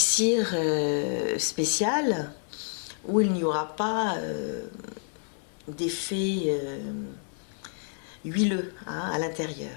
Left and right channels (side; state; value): right; silent; 59 dB below the other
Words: spécial, où il n'y aura pas d'effet huileux à